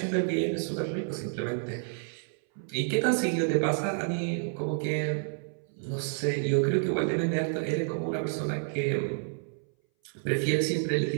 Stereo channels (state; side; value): silent; left; 58 dB below the other